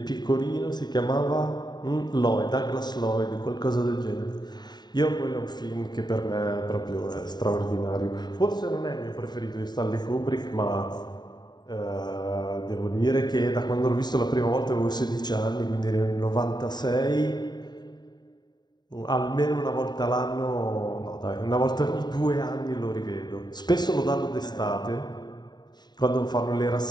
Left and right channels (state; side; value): late; right; 0.20 ms